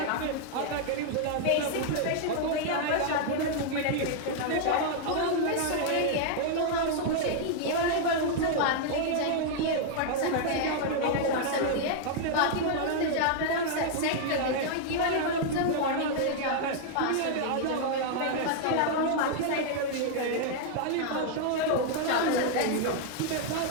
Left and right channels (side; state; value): both; different; correlation -0.01